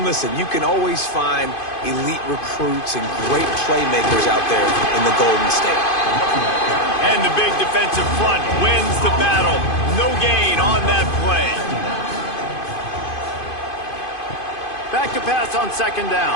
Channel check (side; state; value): right; late; 2.5 ms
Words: listen, you can always find elite recruits and great playmakers out there in the Golden State. And the big defensive front wins the battle. No gain on that play. Back to pass on 2nd